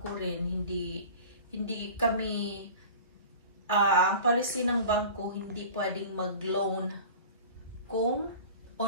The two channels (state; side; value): inverted; both; correlation -0.39